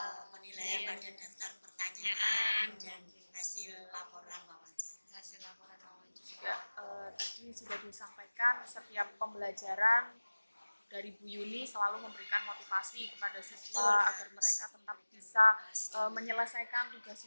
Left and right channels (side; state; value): both; inverted; correlation -1.00